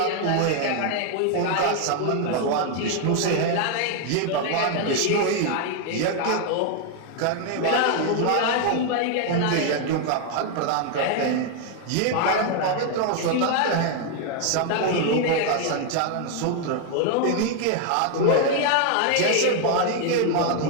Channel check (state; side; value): different; both; correlation 0.00